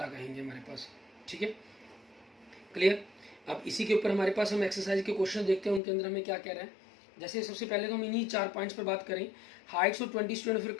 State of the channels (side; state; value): right; drops out; at 5.8 s